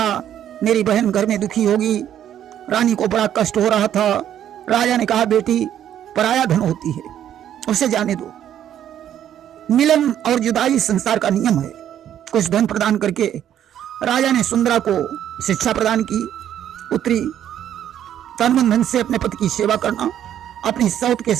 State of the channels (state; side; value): quieter; left; 10.5 dB